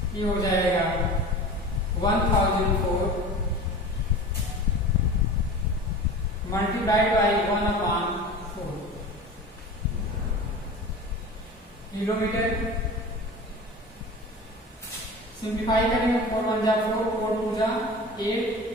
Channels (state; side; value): normal; both; correlation 0.35